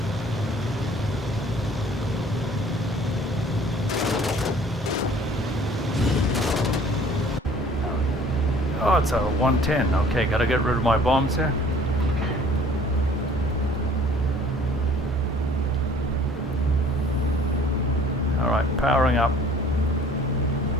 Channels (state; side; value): normal; both; correlation 0.53